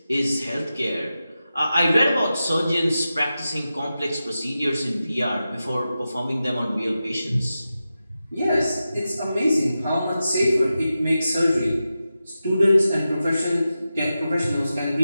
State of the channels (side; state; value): both; inverted; correlation -0.92